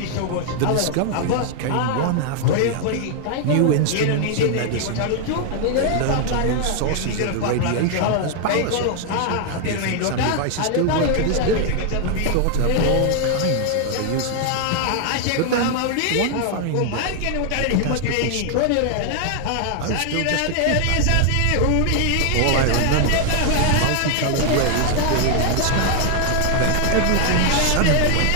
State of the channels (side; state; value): both; different; correlation 0.00